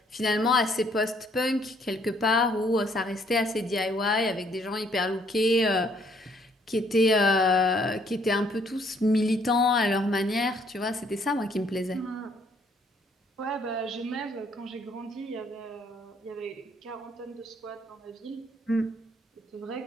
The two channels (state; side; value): normal; both; correlation 0.66